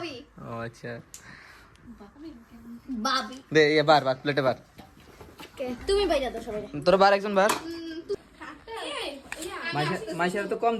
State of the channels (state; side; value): identical; both; correlation 1.00